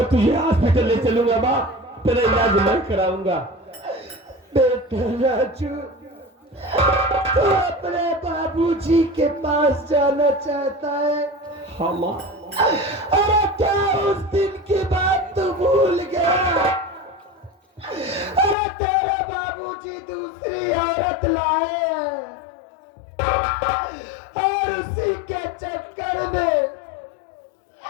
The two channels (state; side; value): drops out; right; at 18.6 s